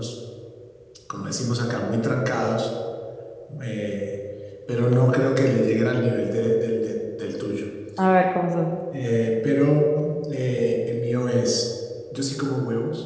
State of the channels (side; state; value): both; identical; correlation 1.00